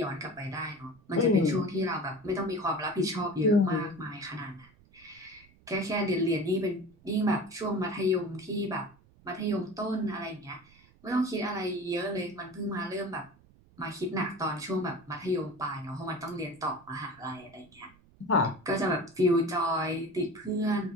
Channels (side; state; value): right; noise; rumble, 27 dB below the sound